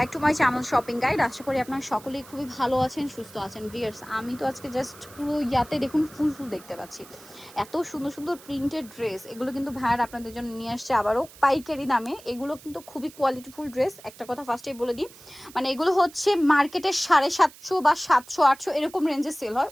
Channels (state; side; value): noise; right; hiss, 21 dB below the sound